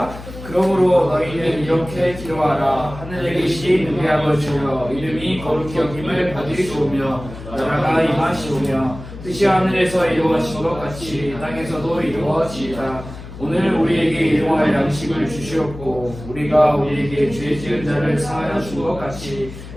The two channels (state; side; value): noise; left; hum, 13 dB below the sound